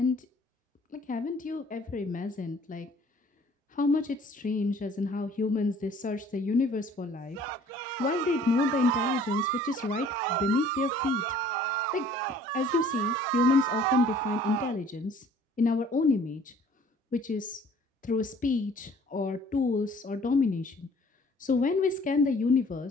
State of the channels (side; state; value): both; normal; correlation 0.54